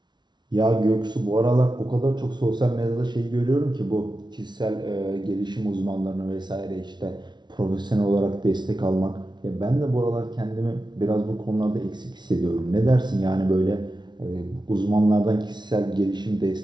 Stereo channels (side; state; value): left; late; 0.21 ms